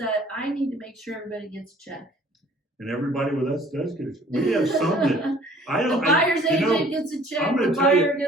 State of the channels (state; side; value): normal; both; correlation 0.54